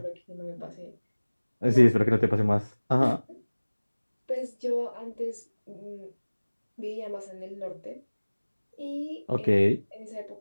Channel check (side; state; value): both; inverted; correlation -1.00